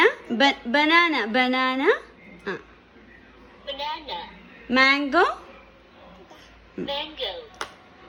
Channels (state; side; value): identical; both; correlation 1.00